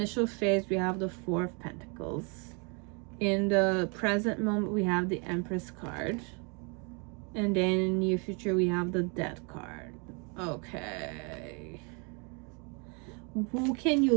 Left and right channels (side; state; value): left; quieter; 34.1 dB